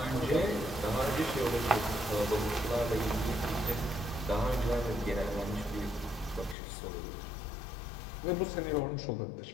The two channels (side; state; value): right; drops out; at 6.6 s